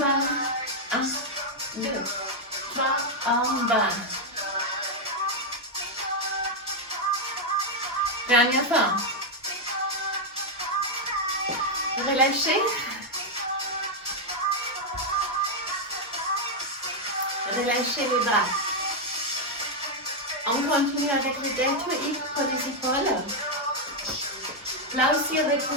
1, 2, 3, en bas. Dernière fois. Relâchez. Relâchez les bras. On continue avec le deltoïde pour les épaules. Là aussi,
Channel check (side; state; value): both; normal; correlation 0.00